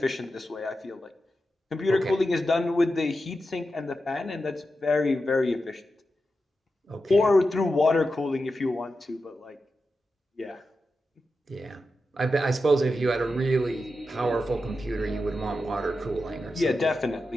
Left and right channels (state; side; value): normal; both; correlation 0.90